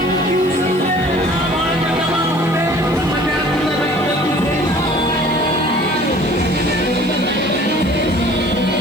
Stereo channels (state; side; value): noise; left; hiss, 24 dB below the sound